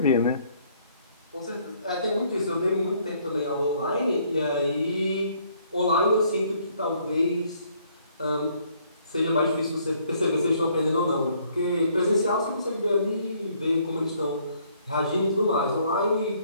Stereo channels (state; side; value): inverted; both; correlation -0.65